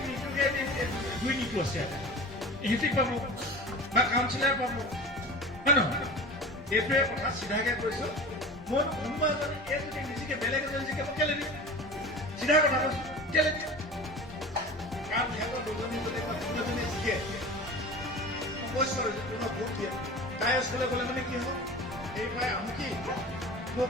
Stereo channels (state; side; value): normal; both; correlation 0.35